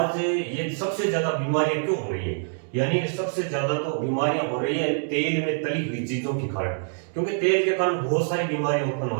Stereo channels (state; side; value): silent; left; digital silence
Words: ये सबसे ज्यादा बीमारियां क्यों हो रही है, यानी सबसे ज्यादा तो बीमारियां हो रही है तेल में तली हुई चीजों के कारण, क्योंकि तेल के कारण बहुत सारी बीमारियां उत्पन्न